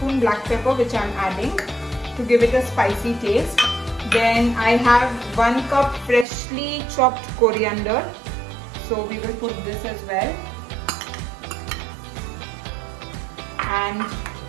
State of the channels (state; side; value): drops out; left; at 6.2 s